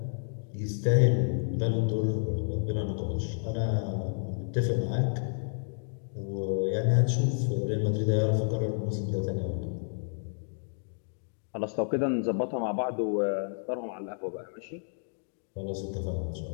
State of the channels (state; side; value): silent; right; digital silence